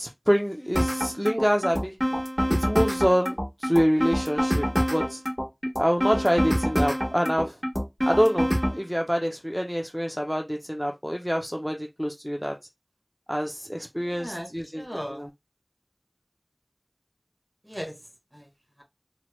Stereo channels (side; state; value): both; identical; correlation 1.00